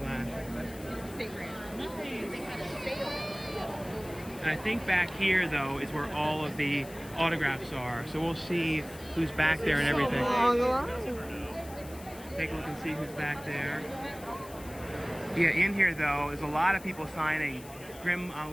And I think back here though is where all of the autographs are. So we'll see who's back there and everything. Take a look and see who's back there. Yeah, in here though, there's a lot of people signing. Grim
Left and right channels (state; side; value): noise; left; hiss, 18 dB below the sound